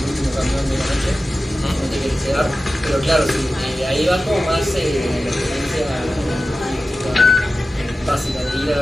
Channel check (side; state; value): both; normal; correlation 0.95